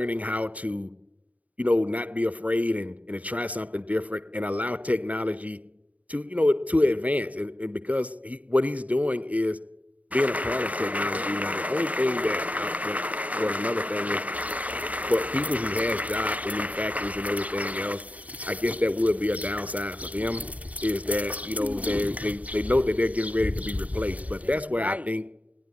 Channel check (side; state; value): left; late; 0.070 ms